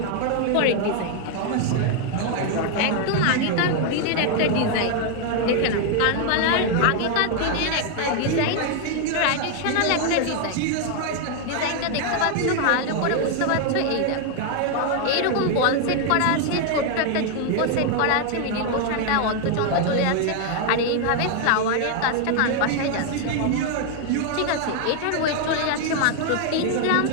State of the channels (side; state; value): both; different; correlation 0.00